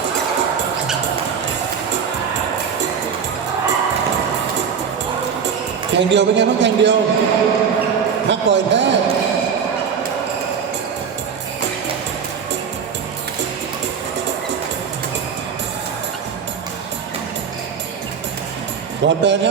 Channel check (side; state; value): left; quieter; 6.8 dB